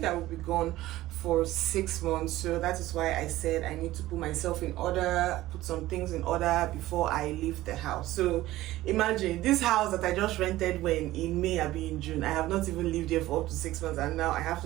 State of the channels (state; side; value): quieter; left; 16.2 dB